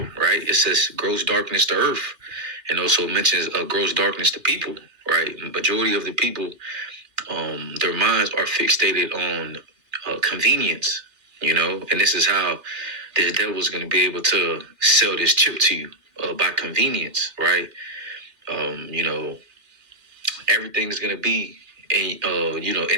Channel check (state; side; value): late; left; 3.3 ms